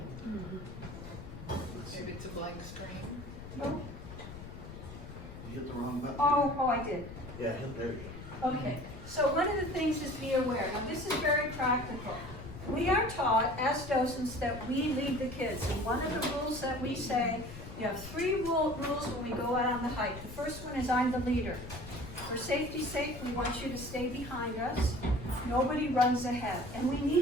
Maybe it's a blank screen. Oh. You hit the wrong button. Oh, I did. Yeah, there you go. Okay. So one of the things is be aware. Now this is very practical. We are taught as docents that we lead the kids. And one of the rules that we say, you have 3 rules when we go out on the hike. The first one is I'm the leader. For safety's sake, we want you to stay behind us. Nobody runs ahead. And we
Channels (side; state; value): left; noise; rumble, 12 dB below the sound